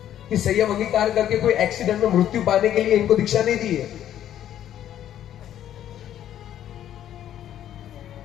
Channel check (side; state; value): right; quieter; 11.2 dB